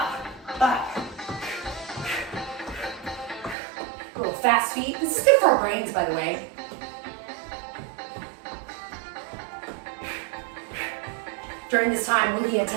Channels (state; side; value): drops out; left; at 3.6 s